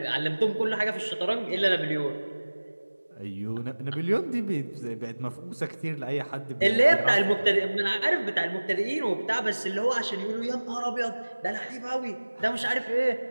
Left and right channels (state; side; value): inverted; both; correlation -1.00